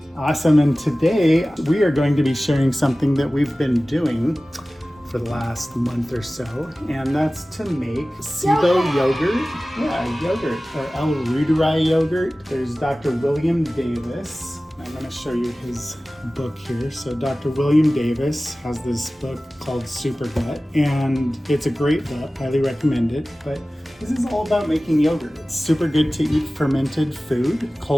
Awesome, and today we are going to be sharing something that we've been doing for the last month or so, and that's to make SIBO yogurt. Yeah, yogurt, or 𝗟𝗏𝗄𝗏 yogurt. There's Dr. William Davis. I'm going to show you his book here. So Dr. William Davis has this book called Super Gut, and it's a great book. Highly recommend it. But this is all about making yogurt. It's super good to eat fermented food,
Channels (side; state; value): both; normal; correlation 0.97